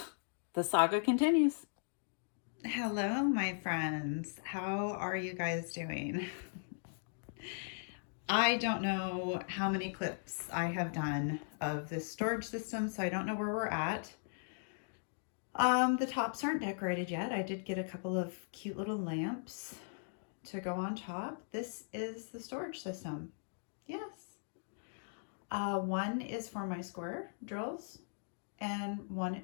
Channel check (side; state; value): right; silent; digital silence